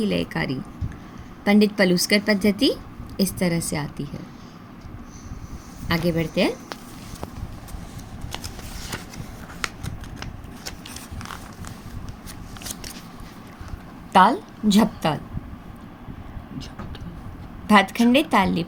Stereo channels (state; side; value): identical; both; correlation 1.00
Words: लयकारी पंडित पलुस्कर पद्धति इस तरह से आती है। आगे बढ़ते हैं। ताल झपताल भातखंडे ताल